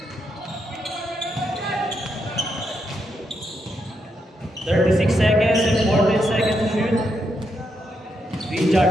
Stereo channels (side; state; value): both; normal; correlation 0.81